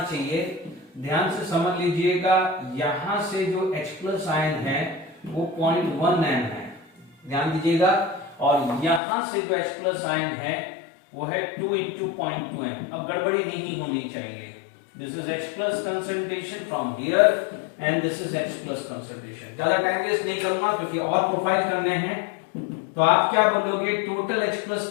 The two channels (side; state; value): right; drops out; at 9.0 s